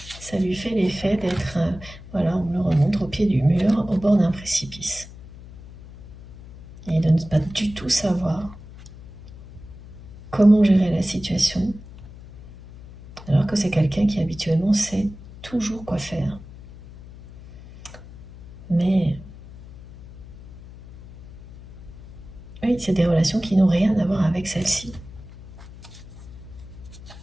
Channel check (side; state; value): left; noise; hum, 17 dB below the sound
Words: Ça lui fait l'effet d'être, voilà, on le remonte au pied du mur, au bord d'un précipice. Et de ne pas du tout savoir comment gérer la situation, alors que c'est quelqu'un qui habituellement sait toujours quoi faire. Mais oui, c'est des relations qui n'ont rien à voir avec celle-ci.